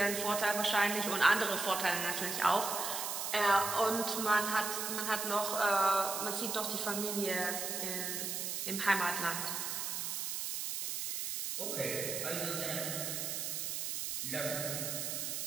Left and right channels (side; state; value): right; noise; hiss, 2 dB below the sound